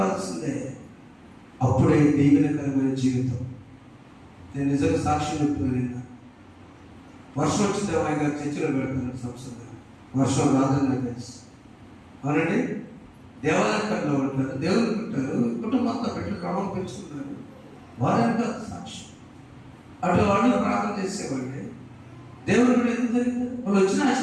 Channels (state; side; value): identical; both; correlation 1.00